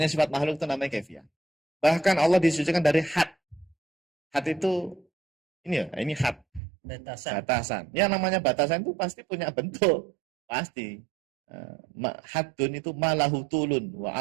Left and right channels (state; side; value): drops out; left; at 6.6 s